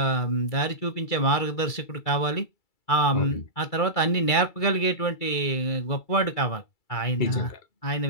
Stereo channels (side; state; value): right; late; 2.3 ms